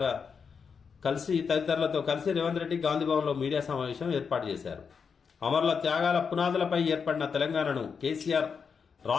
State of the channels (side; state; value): right; quieter; 6.0 dB